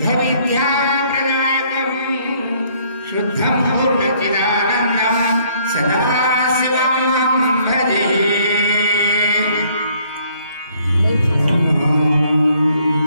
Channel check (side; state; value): both; inverted; correlation -0.64